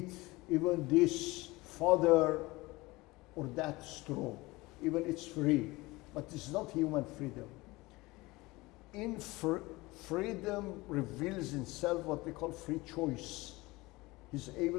even this fodder or that straw. Even it's free, but it's not human freedom. In freedom reveals in self what we call free choice. He's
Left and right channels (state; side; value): quieter; right; 21.6 dB